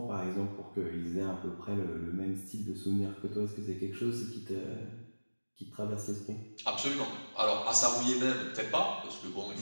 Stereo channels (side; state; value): both; inverted; correlation -1.00